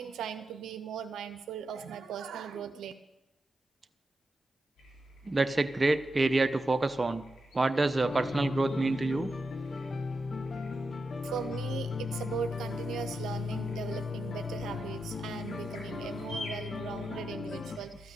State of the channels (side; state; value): both; normal; correlation 0.87